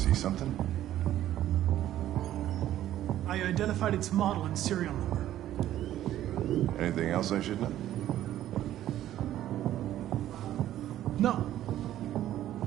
Something? I identified its model and serial number. Anything else I should know? No.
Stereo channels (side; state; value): left; quieter; 12.7 dB